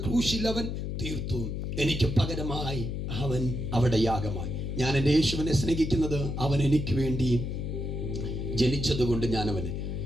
ക്രൂശിൽ അവൻ തീർത്തു. എനിക്ക് പകരമായി അവൻ അവിടെ യാഗമായി. ഞാൻ എൻ്റെ യേശുവിനെ സ്നേഹിക്കുന്നത് അവൻ എനിക്ക് വേണ്ടി ജനിച്ചതുകൊണ്ട്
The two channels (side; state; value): left; noise; hum, 3 dB below the sound